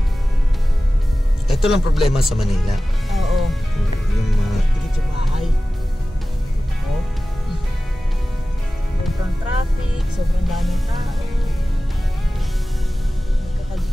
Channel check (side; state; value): both; normal; correlation 0.96